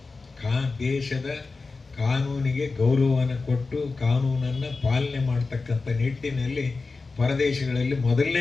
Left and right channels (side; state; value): right; quieter; 4.0 dB